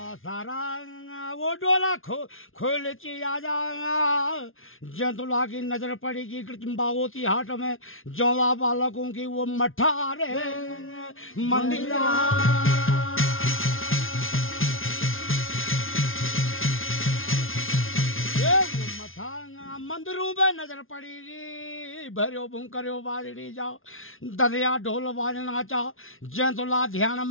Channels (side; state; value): right; late; 0.60 ms